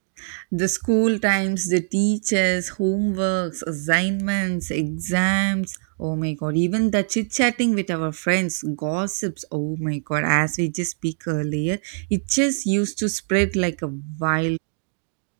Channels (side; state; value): left; silent; 63 dB below the other